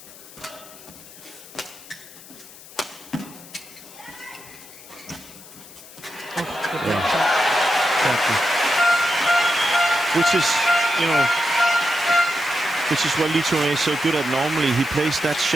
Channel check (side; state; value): left; noise; hiss, 19 dB below the sound